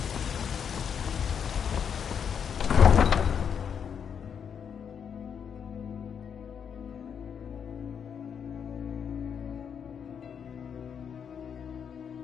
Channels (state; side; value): quieter; right; 7.5 dB